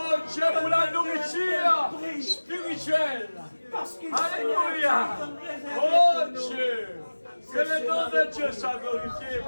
Dieu pour la nourriture spirituelle. Alléluia. Oh Dieu. Que le nom de Dieu soit glorifié,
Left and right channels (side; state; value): both; inverted; correlation -1.00